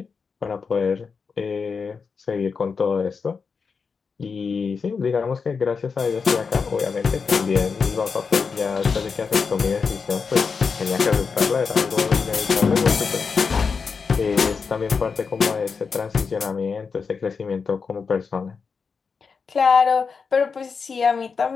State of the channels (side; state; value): right; quieter; 5.4 dB